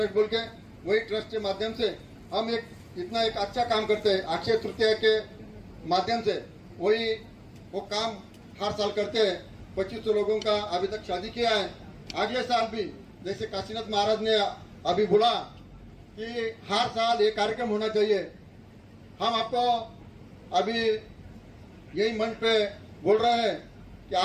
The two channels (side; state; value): both; identical; correlation 1.00